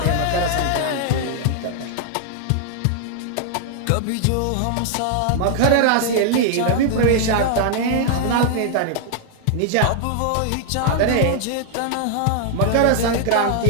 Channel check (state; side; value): different; both; correlation 0.00